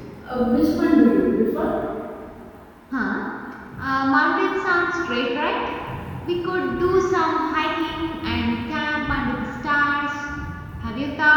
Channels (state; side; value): identical; both; correlation 1.00